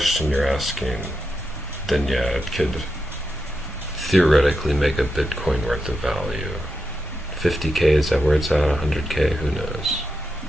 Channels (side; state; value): both; normal; correlation 0.87